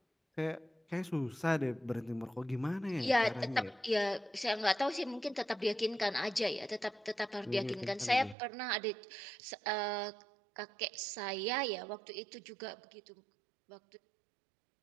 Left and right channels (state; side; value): drops out; left; at 8.3 s